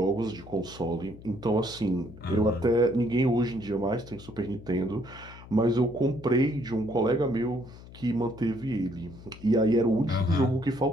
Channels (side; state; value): left; noise; hum, 18 dB below the sound